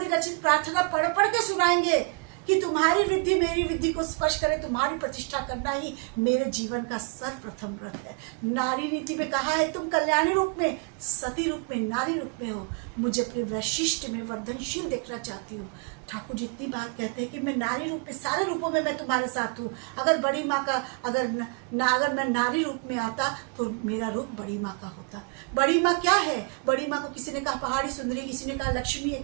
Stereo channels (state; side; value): quieter; left; 35.5 dB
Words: प्रार्थना पढ़ पढ़ के सुनाएंगे कि तुम्हारी वृद्धि मेरी वृद्धि को स्पर्श करे, तुम्हारी प्रतिष्ठा करना ही मेरे जीवन का सर्वप्रथम व्रत है। नारी नीति में कहा है तुम कल्याणी रूप में, सती रूप में, नारी रूप में हो। मुझे अपने वैशिष्ट में वर्धनशील देखना चाहती हूँ। ठाकुर जी इतनी बात कहते हैं कि मैं नारी रूप में, सारे रूपों में मैं तुम्हारे साथ हूँ। अगर बड़ी माँ का अगर मैं नारी रूप में आता तो मेरा रूप बड़ी माँ का होता। बड़ी माँ क्या है? बड़ी माँ को किसी ने कहा पहाड़ी सुंदरी, किसी ने कहा लक्ष्मी है,